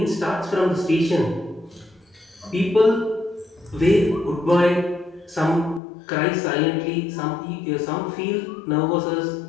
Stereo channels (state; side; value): drops out; right; at 5.8 s